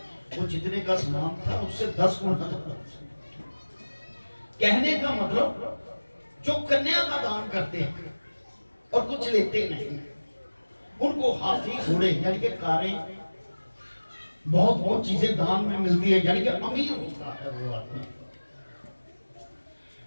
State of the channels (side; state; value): both; inverted; correlation -1.00